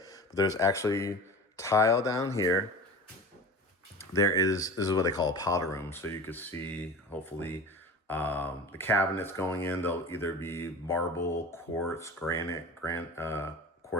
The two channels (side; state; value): both; normal; correlation 0.34